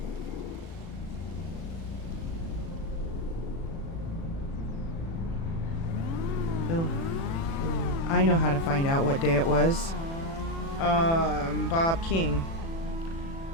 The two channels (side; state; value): right; late; 36 ms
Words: I know how to find out what day it was. Bob King.